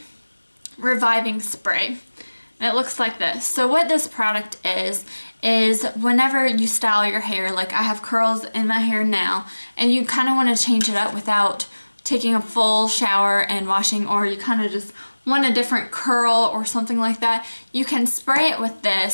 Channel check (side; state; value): both; inverted; correlation -1.00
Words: Reviving Spray. And it looks like this. So what this product is whenever you style your hair, like I have curls in my hair now, and you kind of want to change it up without taking a full shower and washing, or you kind of just want a different curl or something like that, you can spray it with